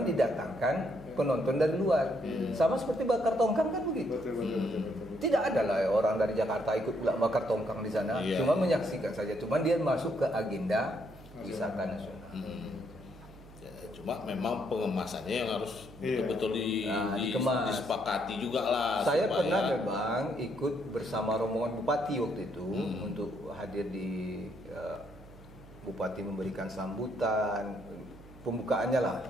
didatangkan penonton dari luar. Sama seperti bakar tongkang kan begitu. Betul. Tidak ada lah orang dari Jakarta ikut pula bakar tongkang di sana. Cuma menyaksikan saja. Cuma dia masuk ke agenda wisata nasional. Cuma memang pengemasannya yang harus betul-betul disepakati juga lah. Saya pernah memang ikut bersama rombongan Bupati waktu itu untuk hadir di Bupati memberikan sambutan pembukaannya lah.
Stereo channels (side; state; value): right; noise; hum, 20 dB below the sound